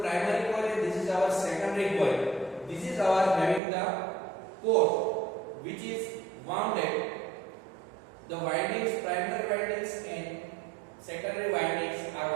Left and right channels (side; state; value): left; drops out; at 3.6 s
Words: coil and this is our secondary coil. This is our having the core, which is wounded. The windings, primary windings and secondary windings are